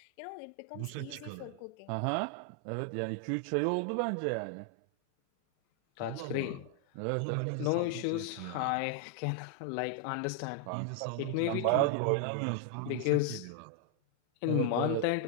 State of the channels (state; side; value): different; both; correlation 0.00